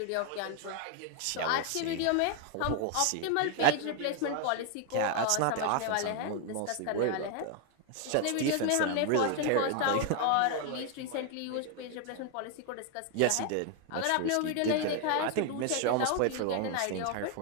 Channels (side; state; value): both; different; correlation 0.00